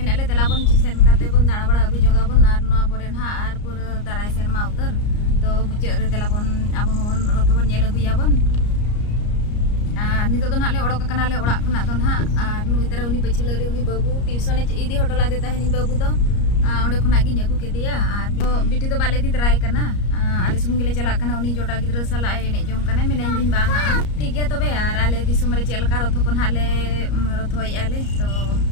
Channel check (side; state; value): right; late; 34 ms